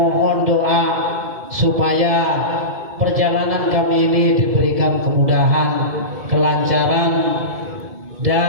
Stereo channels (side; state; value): left; late; 2.2 ms